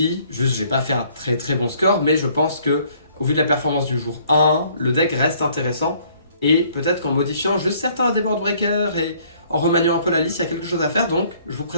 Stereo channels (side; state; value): both; inverted; correlation -0.61